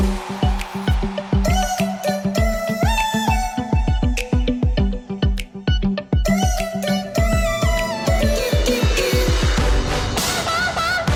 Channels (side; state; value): both; identical; correlation 1.00